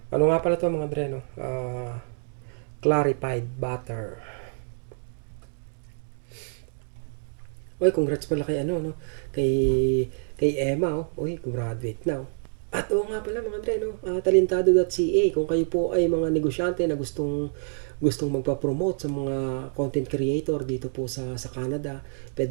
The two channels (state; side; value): silent; left; digital silence